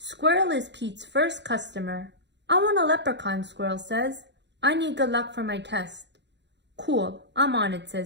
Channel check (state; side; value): late; left; 0.51 ms